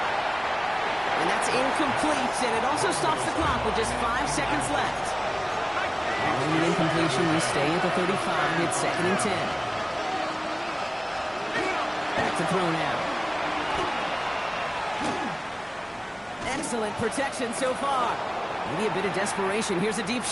And that's incomplete, and it also stops the clock with just 5 seconds left. Following the incompletion, we stay at the 35. It's 2nd and 10. Back to throw now. Excellent protection so far. Maybe a bit of desperation. Here's a deep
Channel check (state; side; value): identical; both; correlation 1.00